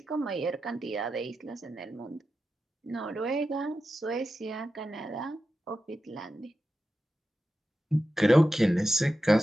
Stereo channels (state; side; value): normal; both; correlation 0.91